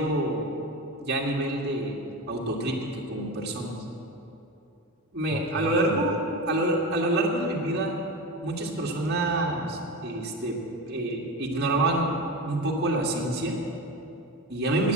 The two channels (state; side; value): normal; both; correlation 0.24